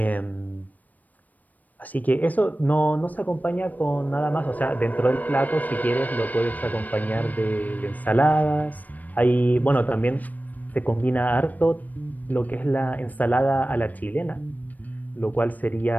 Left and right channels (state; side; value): late; right; 0.080 ms